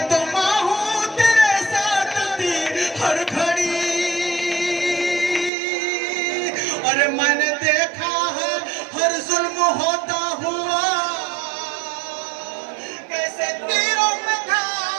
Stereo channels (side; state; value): left; drops out; at 5.5 s